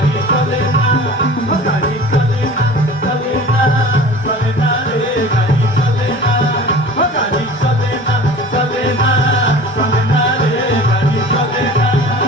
চলে না গাড়ি চলে না চলে না চলে না রে গাড়ি চলে না গাড়ি চলে না চলে না চলে না রে গাড়ি চলে না।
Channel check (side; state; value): both; normal; correlation 0.41